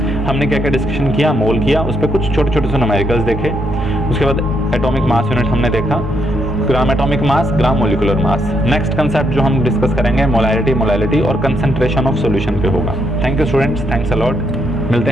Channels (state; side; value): normal; both; correlation 0.76